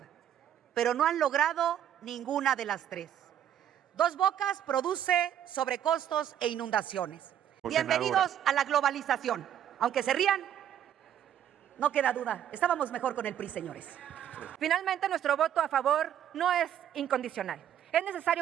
pero no han logrado ninguna de las tres. Dos Bocas produce sobrecostos e inundaciones. Bienvenidos a la globalización. Aunque se rían, no queda duda, estábamos mejor con el PRI, señores. Finalmente, nuestro voto a favor no es incondicional. Es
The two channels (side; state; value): left; quieter; 10.2 dB